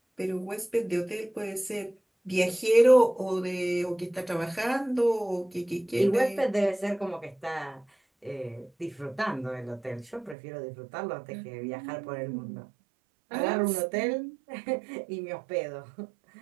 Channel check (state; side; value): drops out; left; at 10.4 s